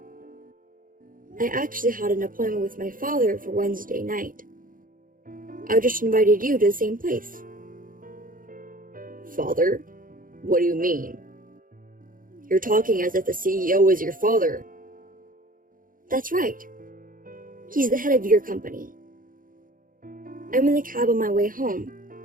I actually had an appointment with my father for Wednesday night. I just invited you to the same place. Father? What do you mean? You're talking as if the CEO is your father. That's right. He's the head of your company. I'm in the cab on my way home,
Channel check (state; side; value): late; left; 0.40 ms